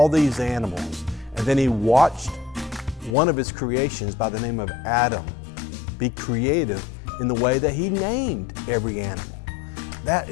these animals. And then He watched one of His creations by the name of Adam be creative in the way that He named every animal. That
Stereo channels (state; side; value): drops out; right; at 3.2 s